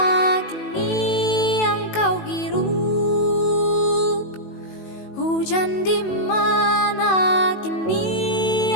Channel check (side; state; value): right; late; 18 ms